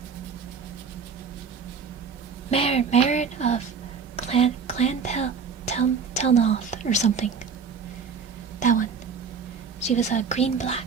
Marin of Clan Telnoth or something. That one. She was a green-black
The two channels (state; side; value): quieter; left; 5.8 dB